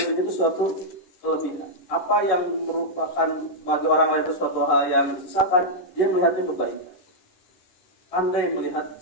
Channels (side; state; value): right; late; 11 ms